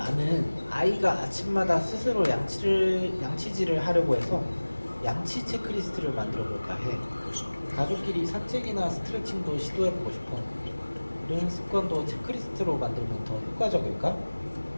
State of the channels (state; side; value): inverted; both; correlation -1.00